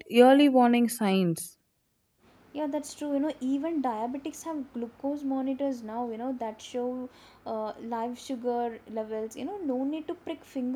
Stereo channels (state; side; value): identical; both; correlation 1.00